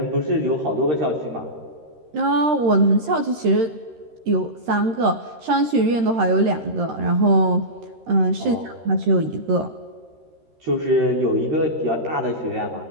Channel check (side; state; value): left; late; 13 ms